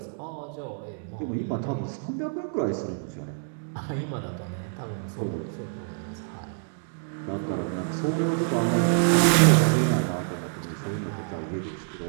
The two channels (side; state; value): left; silent; digital silence